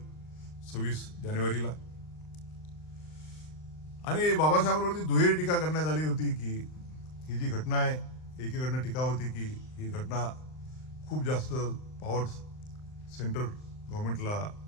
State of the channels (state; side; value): late; right; 39 ms